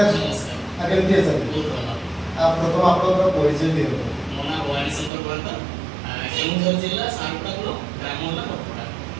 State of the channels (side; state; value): left; drops out; at 5.1 s